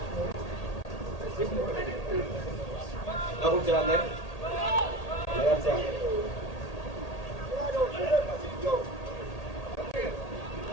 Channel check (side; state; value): right; late; 1.8 ms